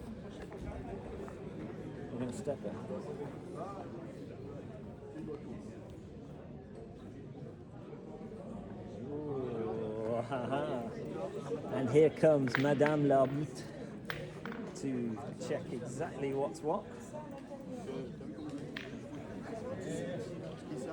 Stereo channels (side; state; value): both; identical; correlation 1.00